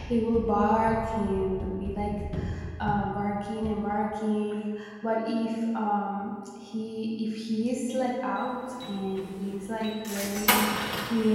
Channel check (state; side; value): identical; both; correlation 1.00